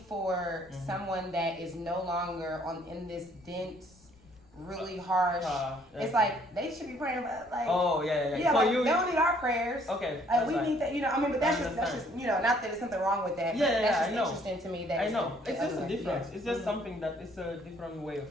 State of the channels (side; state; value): left; noise; rumble, 29 dB below the sound